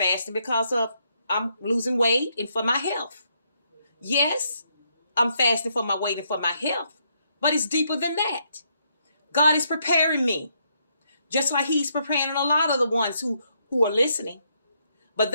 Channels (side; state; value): both; inverted; correlation -0.75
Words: because of I'm losing weight and for my health. Yes, I'm fasting for my weight and for my health. But it's deeper than that. God is preparing me. Just like he's preparing a lot of the ones who are listening. But